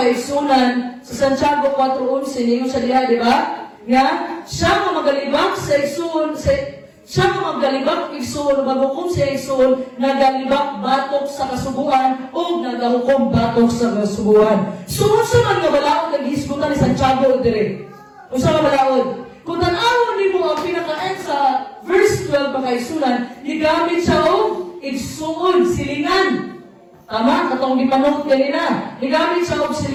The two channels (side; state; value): both; identical; correlation 1.00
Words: sa Santiago 4:11 ninyo sa diha, di ba? Nga, siya nga magalibak sa igsuon, siya nga magalibak igsuon, bago kung siya igsuon, nagalibak batok sa kasubuan o nagahukom batok sa kasubuan. So, unsa man nga balaod naghisgutan ni Santiago dire? Unsa nga balaod? Kung tanawon nimo ang pinaka-end sa verse 12 mga isunan, gigamit siya og igsuon, silingan. Tama? Katong gipanong kanina. Gigamit siya og